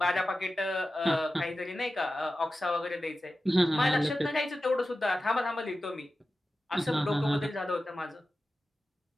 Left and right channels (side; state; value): both; normal; correlation 0.94